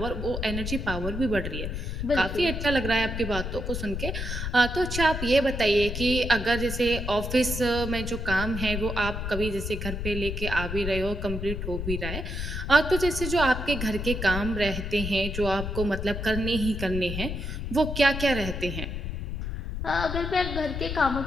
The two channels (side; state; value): left; noise; rumble, 4 dB below the sound